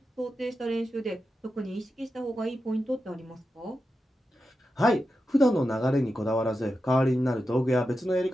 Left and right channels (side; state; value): both; normal; correlation 0.90